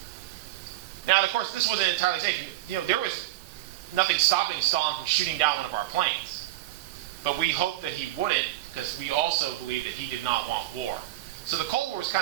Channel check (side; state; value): left; quieter; 16.6 dB